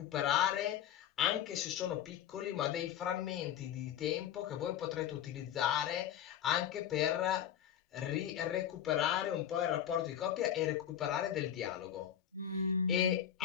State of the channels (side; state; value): right; quieter; 10.0 dB